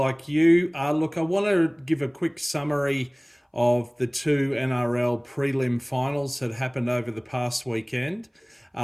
you. Look, I want to give a quick summary of the two NRL prelim finals that happened over the past weekend,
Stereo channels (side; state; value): both; identical; correlation 1.00